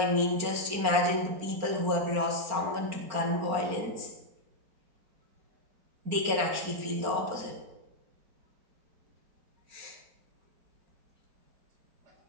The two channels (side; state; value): left; late; 4.4 ms